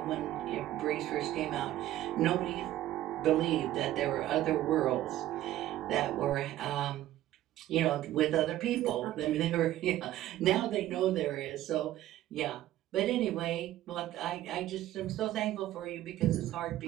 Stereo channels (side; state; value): left; quieter; 14.1 dB